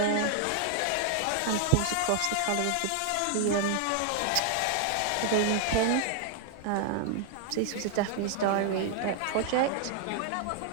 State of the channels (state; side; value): different; both; correlation 0.00